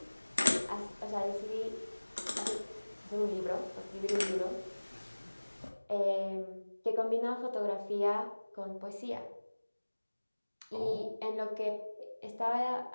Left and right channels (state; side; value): inverted; both; correlation -1.00